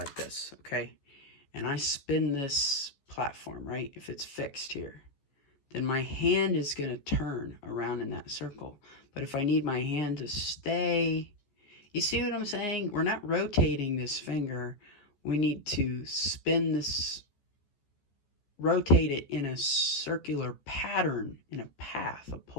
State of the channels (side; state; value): right; late; 14 ms